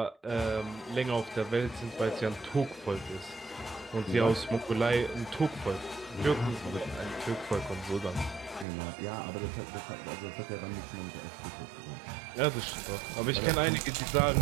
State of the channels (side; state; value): left; drops out; at 8.7 s